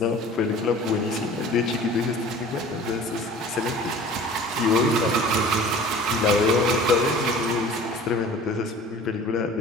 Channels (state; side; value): normal; both; correlation 0.44